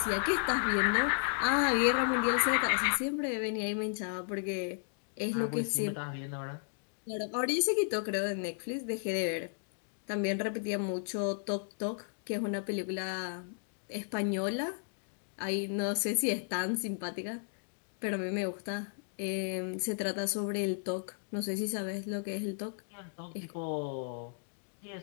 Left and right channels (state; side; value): silent; right; digital silence